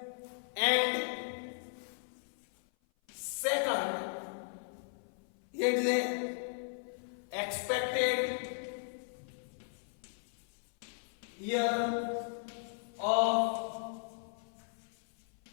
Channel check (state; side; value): silent; right; 53 dB below the other